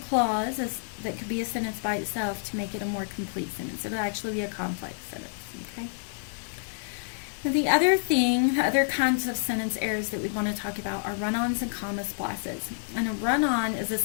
clause that could be a sentence by itself to make it a more complete sentence. It'll actually be a complex sentence, okay? Now the other kinds of sentence errors that we want to talk about are run-ons and comma splices. And a run-on is a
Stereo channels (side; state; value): right; silent; digital silence